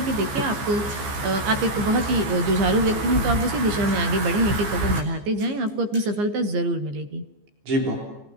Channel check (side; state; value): left; late; 14 ms